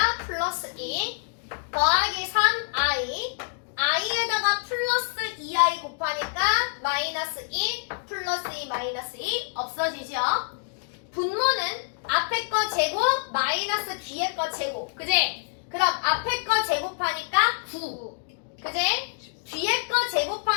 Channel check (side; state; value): right; silent; digital silence